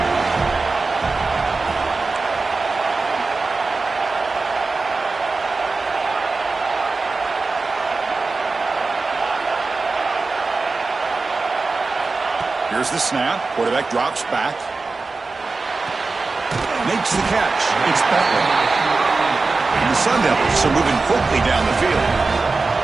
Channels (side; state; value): left; quieter; 3.9 dB